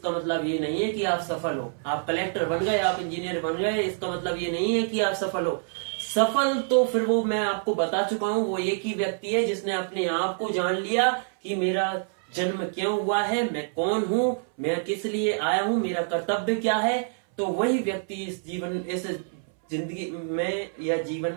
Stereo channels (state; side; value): silent; left; 61 dB below the other